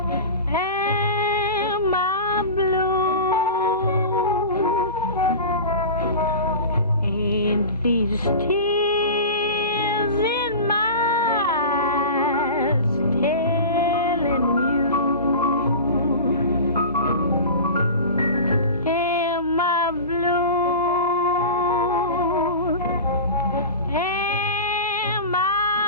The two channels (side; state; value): both; inverted; correlation -0.31